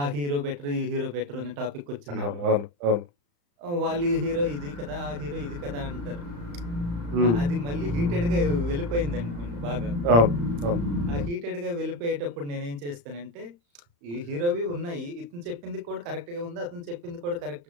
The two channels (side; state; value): left; late; 35 ms